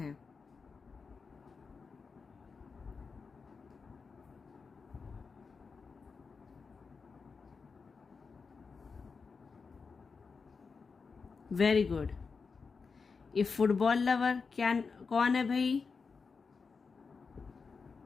Very good. ये फुटबॉल लवर क्या, कौन है भाई?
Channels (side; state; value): right; quieter; 5.0 dB